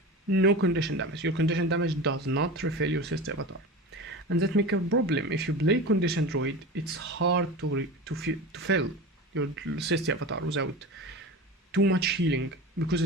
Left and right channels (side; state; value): both; normal; correlation 0.30